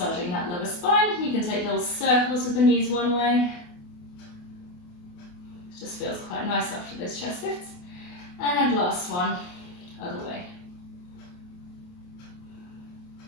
that lower spine. You can take little circles with the knees one way. It just feels quite nice after those chest lifts. And last one, other way.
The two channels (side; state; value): right; late; 28 ms